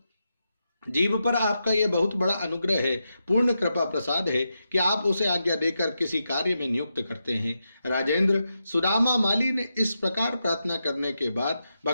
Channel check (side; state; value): both; inverted; correlation -0.87